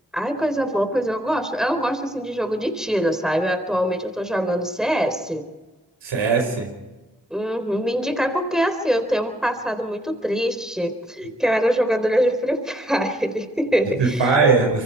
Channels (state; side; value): normal; both; correlation 0.66